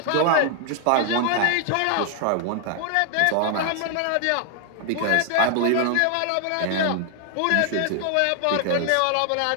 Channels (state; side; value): different; both; correlation 0.00